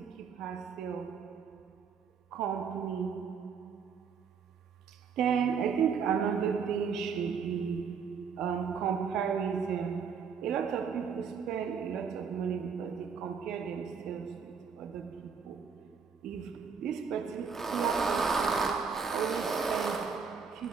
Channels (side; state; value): left; quieter; 6.2 dB